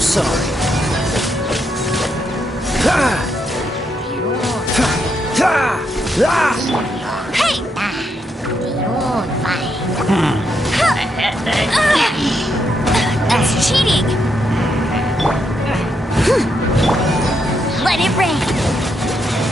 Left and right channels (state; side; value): normal; both; correlation 0.79